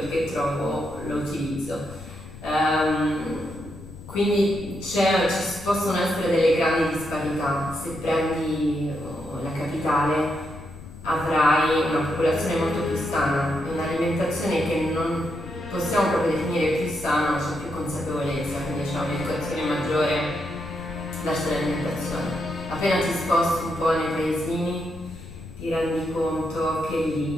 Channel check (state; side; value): noise; left; rumble, 15 dB below the sound